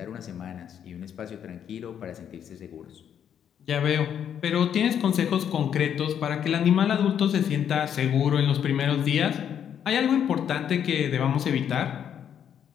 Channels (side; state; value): right; quieter; 8.9 dB